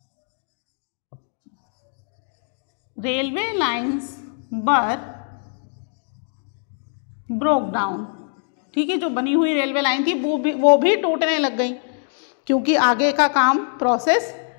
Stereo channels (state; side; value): silent; right; 64 dB below the other